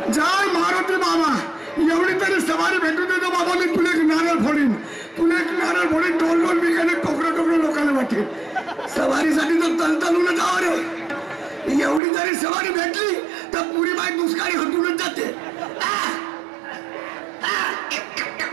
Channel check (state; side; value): drops out; left; at 12.0 s